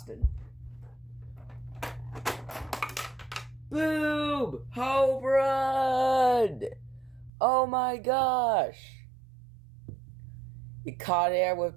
Boom! Home run! Oh my gosh! He caught air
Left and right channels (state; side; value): drops out; left; at 7.3 s